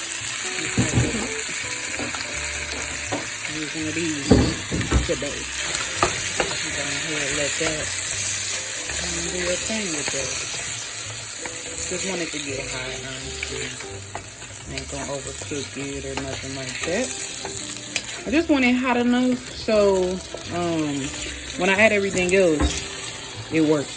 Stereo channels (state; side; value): identical; both; correlation 1.00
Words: using of these today. I'm gonna let that do your thing with that. Just want it to get hot, honestly. Ain't gonna overcook it or nothing like that. I just want it hot enough so when I add everything else, it